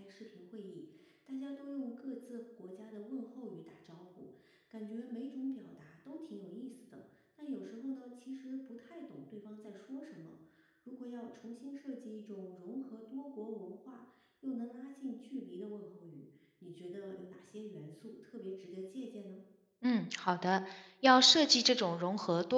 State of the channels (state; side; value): identical; both; correlation 1.00